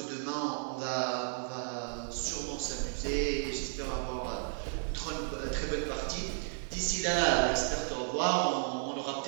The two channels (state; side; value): silent; left; 55 dB below the other